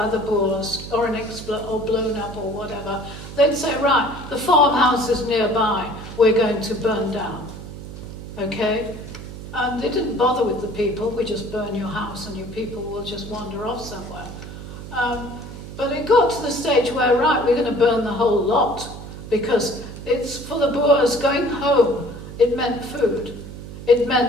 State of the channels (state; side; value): noise; right; hum, 12 dB below the sound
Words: the Boers or or blown up or whatever, they'd say, right, the farmhouses nearby, we're going to burn down. Okay? And they didn't bother with the people. We just burn your house and your people will just wander off somewhere. But it got to the stage where, right, we're going to burn the whole lot, because it's for the Boers going home. It meant food. It